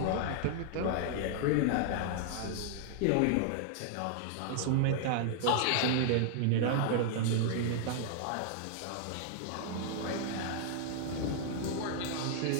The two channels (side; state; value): both; different; correlation -0.01